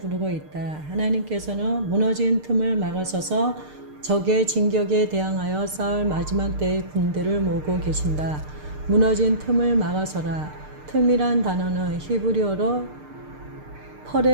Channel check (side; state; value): left; late; 6.6 ms